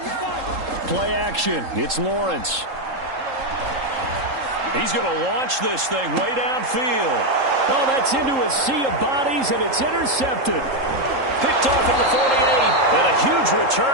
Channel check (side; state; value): left; late; 3.8 ms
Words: Play action. It's Lawrence. He's going to launch this thing way downfield. Oh, that's into a sea of bodies, and it's intercepted. Picked off at the 48, and a huge